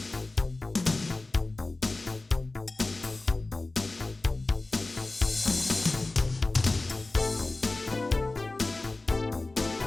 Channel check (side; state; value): right; quieter; 3.1 dB